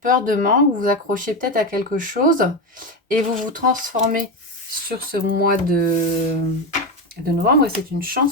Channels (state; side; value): normal; both; correlation 0.15